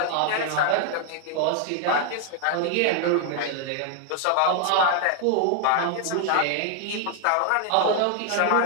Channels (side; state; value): both; different; correlation 0.00